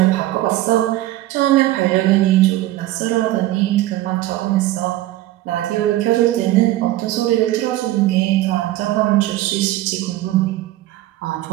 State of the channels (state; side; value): quieter; left; 15.7 dB